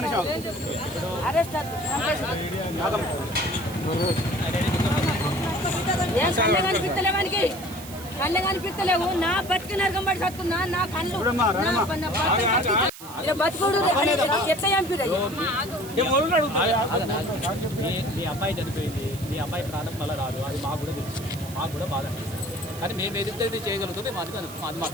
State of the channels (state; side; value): noise; right; hiss, 15 dB below the sound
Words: అరెస్ట్ కళ్ళ కనిపిస్తలేవు నా బతికి నరకం పడి సత్తున్నా నా కళ్ళు బతుకుడు ఎట్లా చంపిరు మీ అబ్బాయి చనిపోయింది మీ అబ్బాయి ప్రాణం మళ్ళీ రాదు అది మాకు కూడా తెలుసు మాకు కూడా బాధ అనిపిస్తుంది కానీ మేము ఏదైతే చేయగలుగుతాం మేము అది